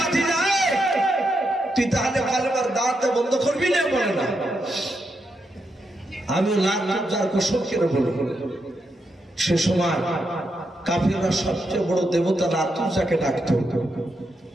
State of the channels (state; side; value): normal; both; correlation 0.83